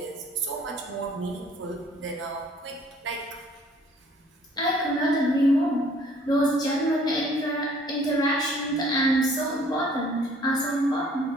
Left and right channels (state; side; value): normal; both; correlation 0.57